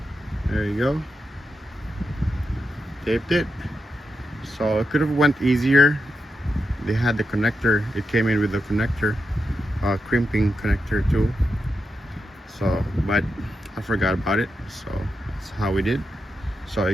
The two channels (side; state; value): both; normal; correlation 0.87